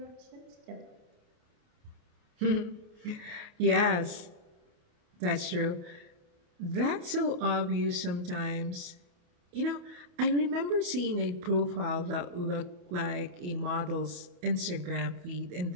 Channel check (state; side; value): late; left; 28 ms